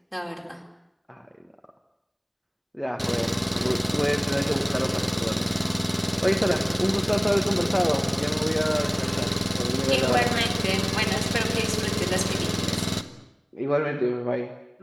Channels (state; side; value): identical; both; correlation 1.00